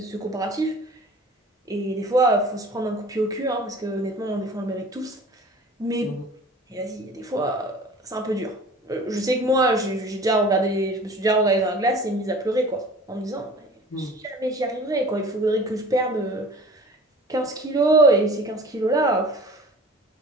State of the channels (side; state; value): both; normal; correlation 0.44